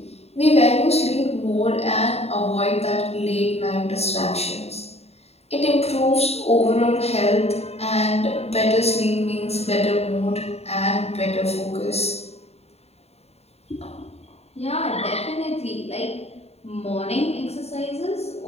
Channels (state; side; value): late; right; 0.30 ms